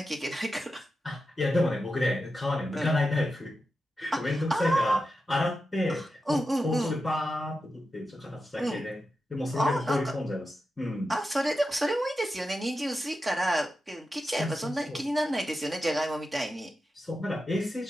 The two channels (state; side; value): normal; both; correlation 0.90